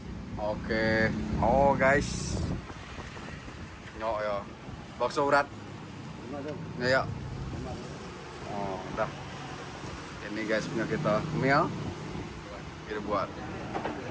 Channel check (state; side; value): identical; both; correlation 1.00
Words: Oke. Oh guys. Yo ya. Bakso urat. Ya ya. Oh, udah. Ini guys punya kita meal. Kita buat